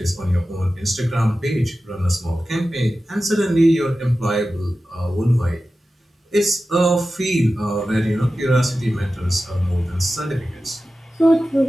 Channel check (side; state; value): both; normal; correlation 0.94